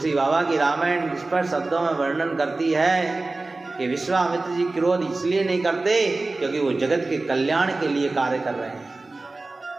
बाबा की रामायण स्पष्ट शब्दों में वर्णन करती है कि विश्वामित्र जी क्रोध इसलिए नहीं करते क्योंकि वो जगत के कल्याण के लिए कार्य कर रहे हैं।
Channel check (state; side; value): quieter; left; 3.3 dB